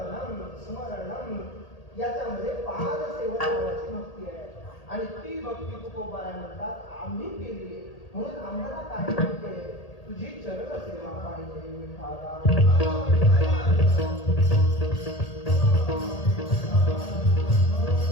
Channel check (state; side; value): late; right; 1.8 ms